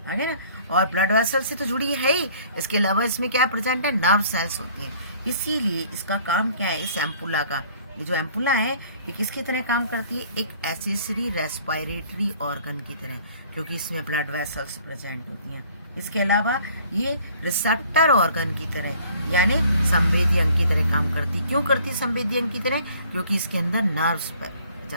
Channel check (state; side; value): inverted; both; correlation -0.55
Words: आगे ना। और ब्लड वेसल से तो जुड़ी है ही, इसके अलावा इसमें क्या प्रेजेंट है? नर्व सेल्स होती हैं। इसीलिए इसका काम क्या है? इस एम्पुला का, ये जो एम्पुला है ये किसकी तरह काम करती है? एक एसेसरी रेस्पिरेटरी ऑर्गन की तरह, क्योंकि इसमें ब्लड वेसल्स प्रेजेंट होती हैं। इसके अलावा ये रिसेप्टर ऑर्गन की तरह यानी संवेदी अंग की तरह काम करती। क्यों करती संवेदी अंग की तरह? क्योंकि इसके अंदर नर्व्स